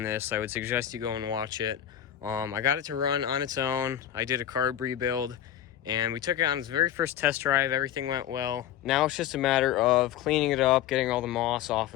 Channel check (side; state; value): right; quieter; 11.0 dB